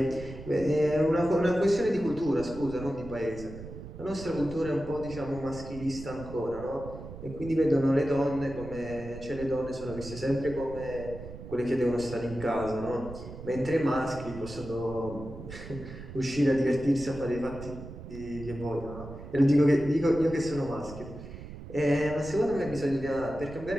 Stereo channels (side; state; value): right; noise; rumble, 12 dB below the sound